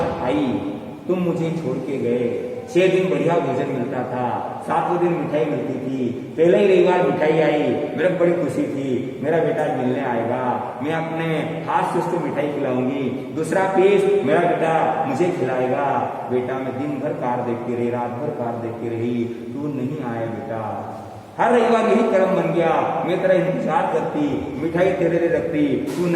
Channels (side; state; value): both; identical; correlation 1.00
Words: आई, तुम मुझे छोड़ के गए। 6 दिन बढ़िया भोजन मिलता था, 7वें दिन मिठाई मिलती थी। पहले ही रविवार मिठाई आई, मेरे को बड़ी खुशी थी, मेरा बेटा मिलने आएगा, मैं अपने हाथ से उसको मिठाई खिलाऊंगी, दूसरा पीस मेरा बेटा मुझे खिलाएगा। बेटा मैं दिन भर कार देखती रही, रात भर कार देखती रही, तू नहीं आया बेटा। हर रविवार यही कर्म बन गया, मैं तेरा इंतजार करती, मिठाई तेरे लिए रखती, तू